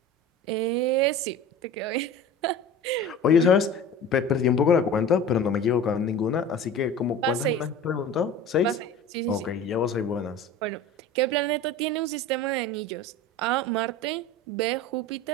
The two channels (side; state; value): both; normal; correlation 0.36